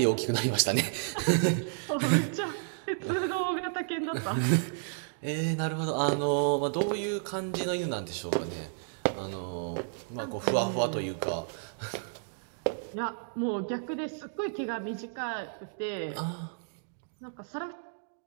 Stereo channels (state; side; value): silent; left; digital silence